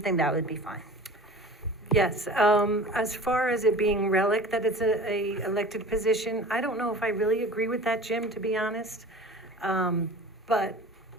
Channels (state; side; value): normal; both; correlation 0.40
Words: that would be fine. Yes, as far as it being relic, that it's a elected position, I don't know if I really agree with that, Jim, to be honest. But